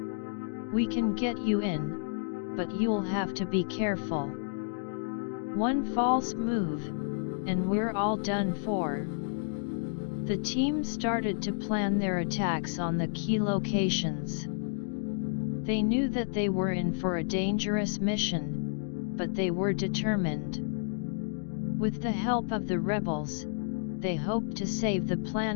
We can get you in, but you'll have to be careful. One false move, and we're all done for." The team started to plan their attacks on the key locations. They knew that they were in for a dangerous mission, but they were determined. With the help of the rebels, they hoped to save the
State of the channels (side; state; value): right; silent; digital silence